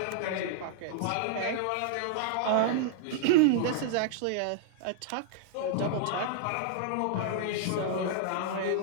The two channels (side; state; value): both; different; correlation -0.01